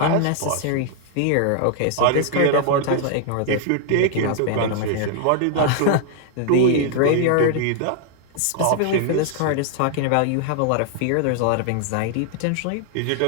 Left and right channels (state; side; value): different; both; correlation 0.00